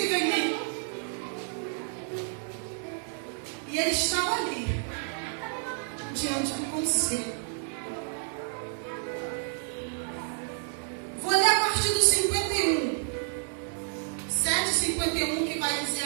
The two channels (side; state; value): left; silent; 55 dB below the other